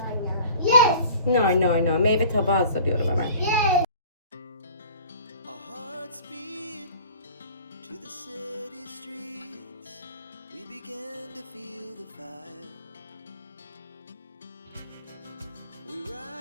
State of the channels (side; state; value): both; inverted; correlation -0.46